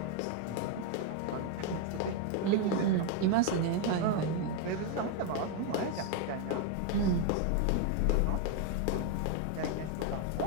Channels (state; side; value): different; both; correlation 0.01